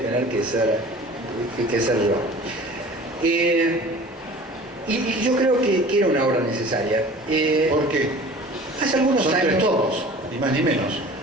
que ser yo. Y yo creo que era una obra necesaria. ¿Por qué? Hace algunos Son años, 3 tomos, ni más ni menos.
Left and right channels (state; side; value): normal; both; correlation 0.43